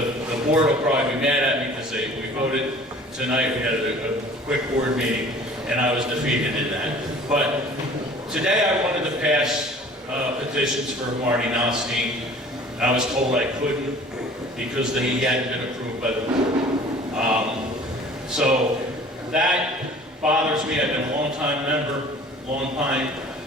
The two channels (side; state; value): both; normal; correlation 0.48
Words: board will probably be mad at me because we voted tonight. We had a quick board meeting, and I was defeated in that. But today I wanted to pass petitions for Marty Nalstein. I was told I couldn't because he hadn't been approved by the board. So that bothers me. I've been a long-time member, long-time